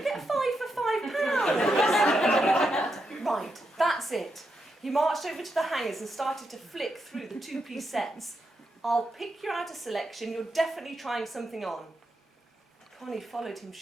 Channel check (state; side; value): normal; both; correlation 0.84